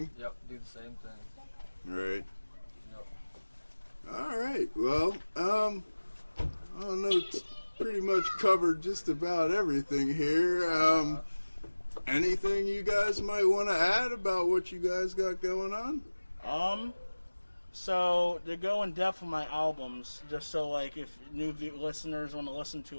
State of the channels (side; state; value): both; inverted; correlation -1.00